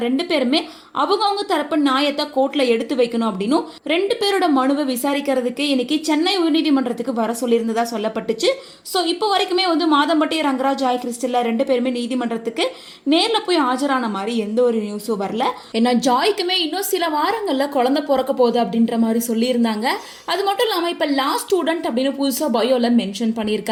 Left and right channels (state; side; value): identical; both; correlation 1.00